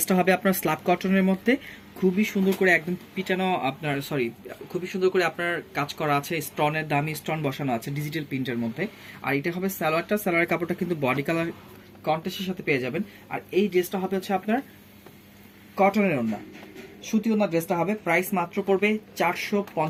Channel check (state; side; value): identical; both; correlation 1.00